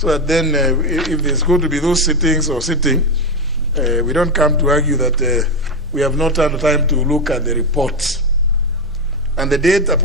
that then if there's going to be those sittings or sitting, we don't come to argue that we have not had time to look at the reports, and the date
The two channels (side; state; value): both; normal; correlation 0.10